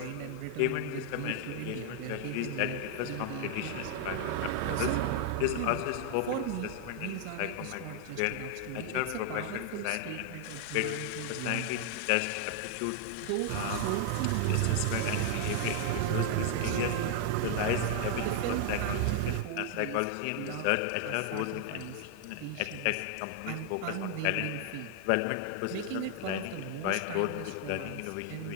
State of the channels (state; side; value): different; both; correlation 0.00